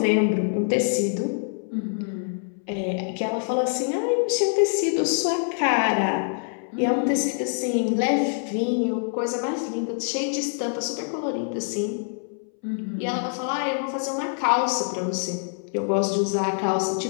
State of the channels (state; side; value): silent; right; 62 dB below the other